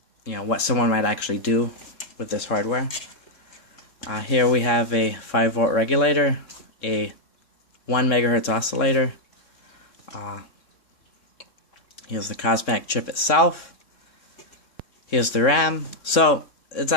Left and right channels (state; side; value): late; right; 3.6 ms